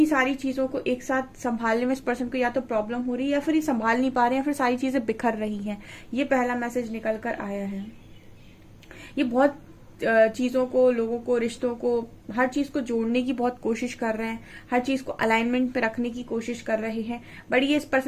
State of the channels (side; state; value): both; identical; correlation 1.00